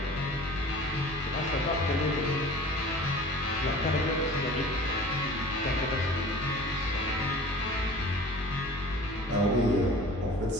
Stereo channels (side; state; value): both; normal; correlation 0.43